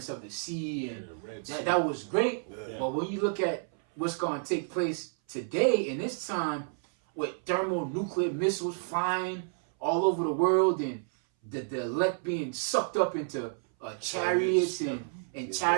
of the sea, and that was great. But when you look at what's going to take place today in this time, with thermonuclear missiles flying all over the world and the elect being sucked up into chariots and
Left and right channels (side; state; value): left; silent; 58 dB below the other